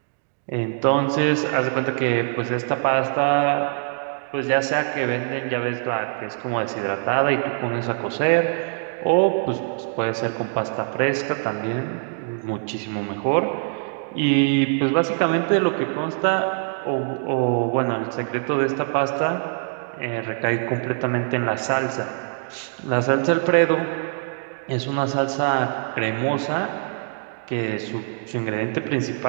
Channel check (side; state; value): left; silent; digital silence